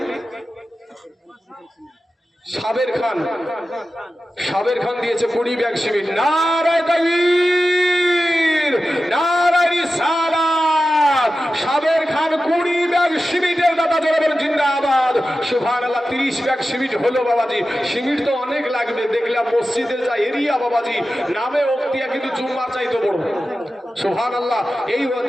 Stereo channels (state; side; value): normal; both; correlation 0.93